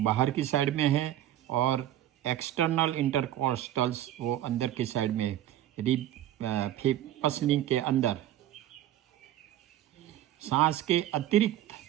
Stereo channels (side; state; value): left; quieter; 12.6 dB